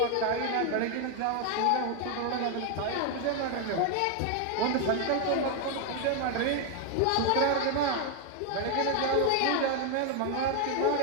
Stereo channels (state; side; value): different; both; correlation 0.01